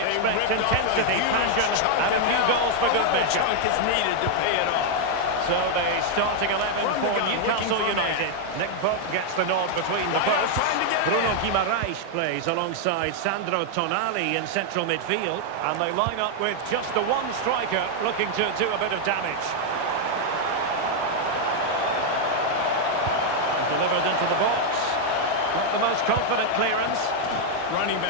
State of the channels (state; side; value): different; both; correlation 0.00